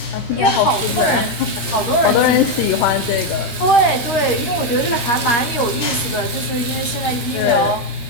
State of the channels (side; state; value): right; late; 13 ms